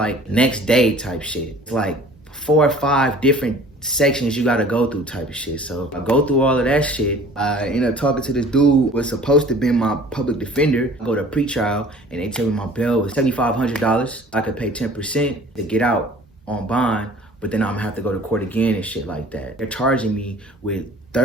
next day type shit. It's like 4 or 5 different sections you gotta go through type of shit. So I go through all of that shit. I end up talking to this dude was supposed to be my public defender. I go to pre-trial and they tell me my bail was $7,500. I could pay 10% to get out on bond, but then I'm gonna have to go to court again and shit like that. They're charging me with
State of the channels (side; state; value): both; normal; correlation 0.49